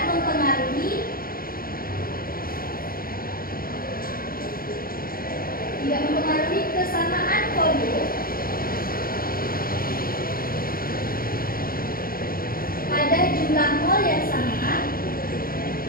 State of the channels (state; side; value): late; right; 0.42 ms